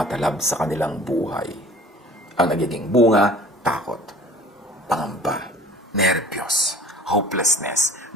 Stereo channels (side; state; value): both; normal; correlation 0.45